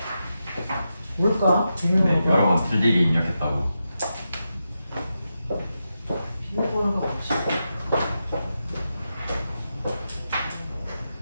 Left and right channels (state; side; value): inverted; both; correlation -0.88